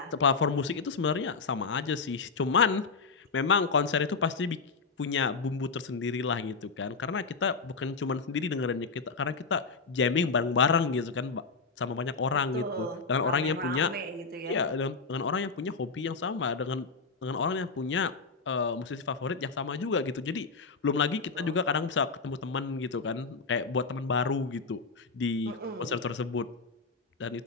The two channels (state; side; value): quieter; right; 4.6 dB